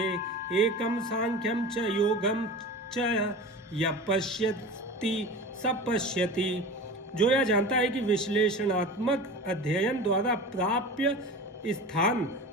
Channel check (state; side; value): normal; both; correlation 0.33